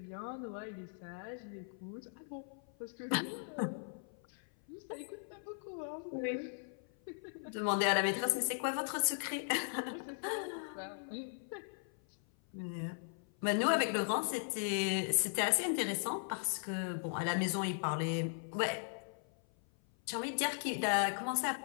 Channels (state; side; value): silent; right; 52 dB below the other